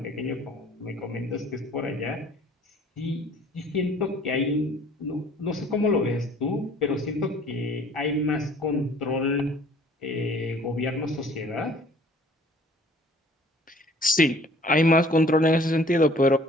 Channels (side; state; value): both; normal; correlation 0.54